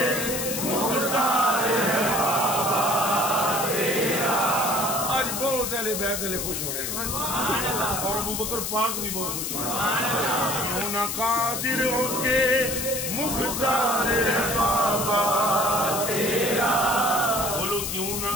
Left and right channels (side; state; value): left; noise; hiss, 3 dB below the sound